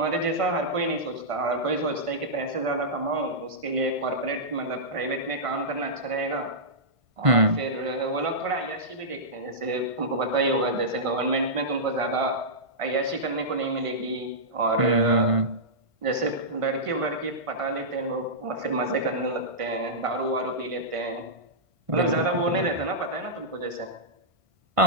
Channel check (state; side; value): late; left; 1.5 ms